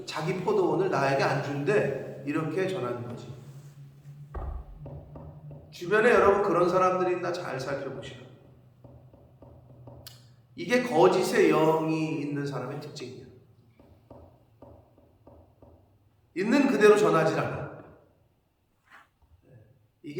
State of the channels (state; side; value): identical; both; correlation 1.00